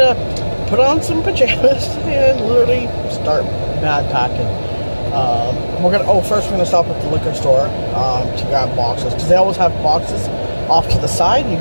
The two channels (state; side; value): inverted; both; correlation -1.00